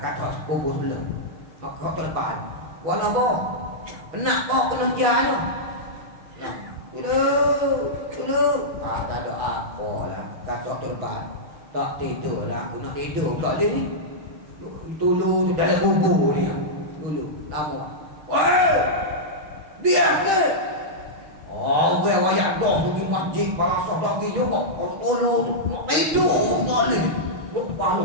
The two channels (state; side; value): late; left; 6.5 ms